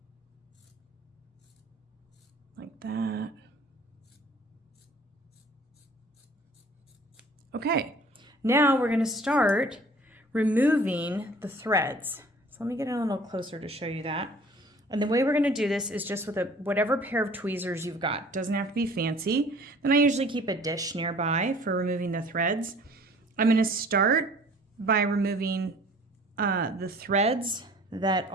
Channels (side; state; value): both; normal; correlation 0.50